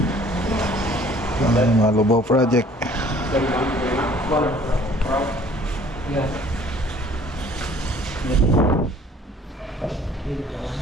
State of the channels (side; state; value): both; normal; correlation 0.54